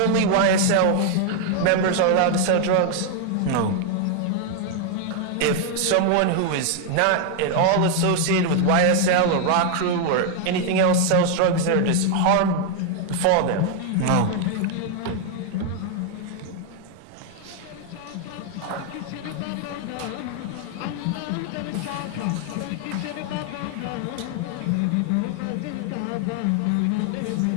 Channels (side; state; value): both; different; correlation 0.00